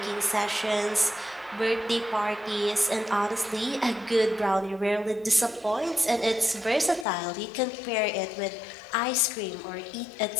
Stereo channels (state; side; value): drops out; right; at 7.1 s